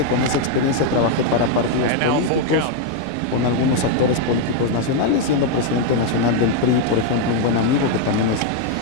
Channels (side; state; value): both; different; correlation 0.01